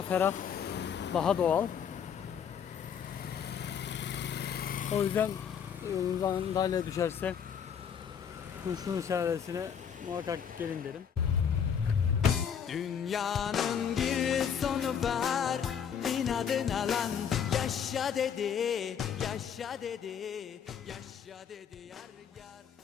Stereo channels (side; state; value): right; quieter; 7.8 dB